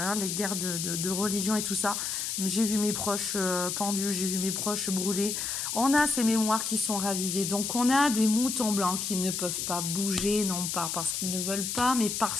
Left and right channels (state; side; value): noise; left; hiss, 2 dB below the sound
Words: les guerres de religion et tout ça. J'ai vu mes proches pendus, j'ai vu mes proches brûlés. On a ces mémoires qui sont ravivées. Donc on a des moutons blancs qui ne peuvent pas bouger, non pas parce qu'ils ne veulent pas, mais